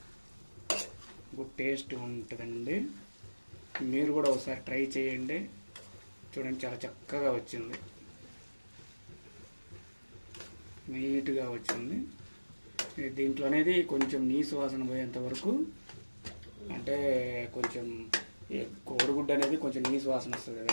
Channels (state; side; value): inverted; both; correlation -1.00